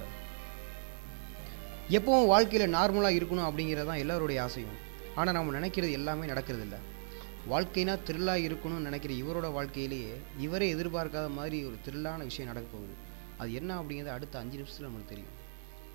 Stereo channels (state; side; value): silent; left; 54 dB below the other